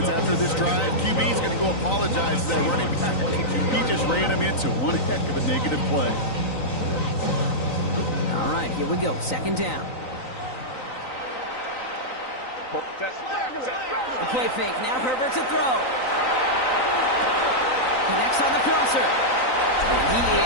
after this drive, QB is going to go apologize to that running back. He just ran him into one heck of a negative play. All right, here we go. Second down. The play fake. Now Herbert to throw. Connects on the crosser. And he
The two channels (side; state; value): right; late; 3.9 ms